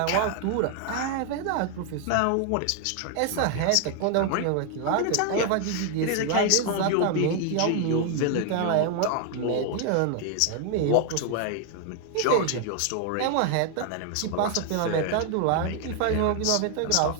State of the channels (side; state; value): both; different; correlation 0.00